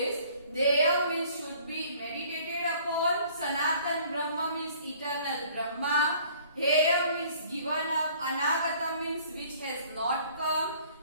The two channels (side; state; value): both; inverted; correlation -0.55